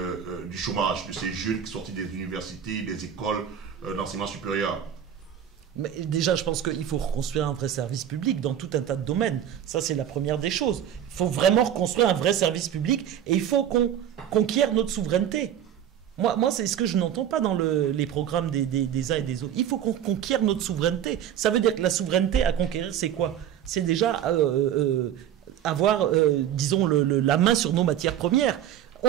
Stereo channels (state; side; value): quieter; left; 10.0 dB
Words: du chômage, de ces jeunes qui sont sortis des universités, des écoles d'enseignement supérieur? Mais déjà, je pense qu'il faut reconstruire un vrai service public dans tout un tas de domaines. Ça, c'est la première des choses. Il faut vraiment reconstruire un vrai service public et il faut qu'on conquiert notre souveraineté. Moi, c'est ce que je n'entends pas dans les programmes des uns et des autres. Il faut qu'on conquiert notre souveraineté. Ça veut dire que la souveraineté à conquérir, c'est quoi? C'est déjà avoir, disons, la main sur nos matières premières.